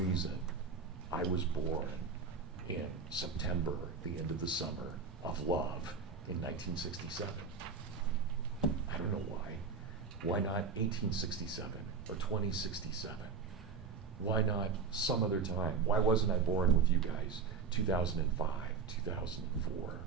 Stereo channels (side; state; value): left; quieter; 5.3 dB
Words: I was born in September, the end of the summer of love, in 1967. I don't know why. Why not 1867 or 2067? Why not some other time? Why wasn't I born with you guys 2005, 2004,